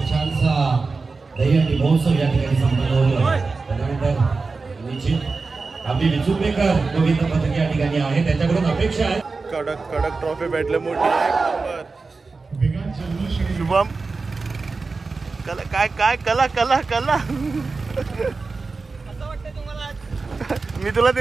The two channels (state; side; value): quieter; left; 4.1 dB